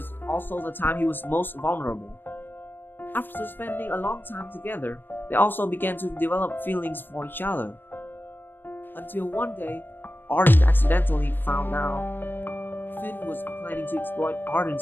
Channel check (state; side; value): late; right; 0.095 ms